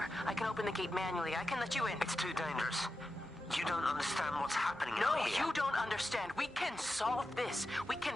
I can open the gate manually. I can let you in. It's too dangerous. You don't understand what's happening No, out here. you don't understand. We can solve this. We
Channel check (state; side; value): normal; both; correlation 0.90